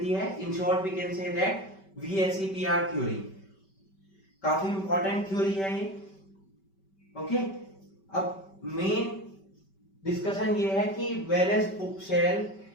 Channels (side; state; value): right; late; 5.2 ms